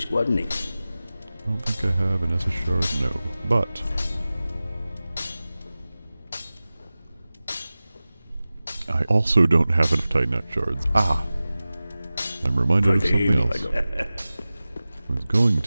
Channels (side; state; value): both; inverted; correlation -0.97